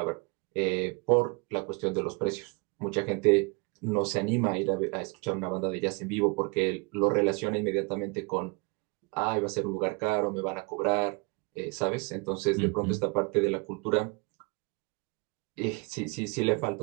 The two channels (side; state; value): left; quieter; 30.9 dB